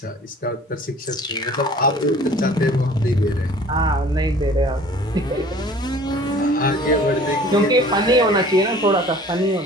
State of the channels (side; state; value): both; normal; correlation 0.48